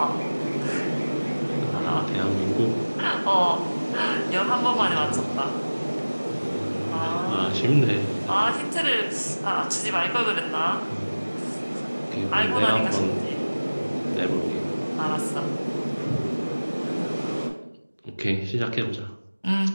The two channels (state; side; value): inverted; both; correlation -1.00